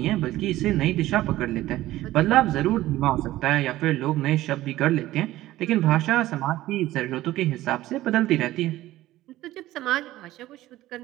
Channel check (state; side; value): quieter; left; 15.8 dB